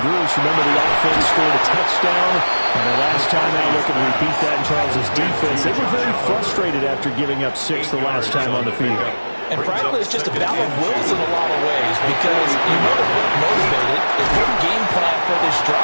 groups. Remember, the offense scored a touchdown. And the last time they look to repeat that in Charles' defense, they were very frustrated after giving up 6 the last time on the field. And frankly, it's just a battle of wills in a lot of ways because you know they're both motivated. They put a game plan for this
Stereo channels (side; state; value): both; inverted; correlation -1.00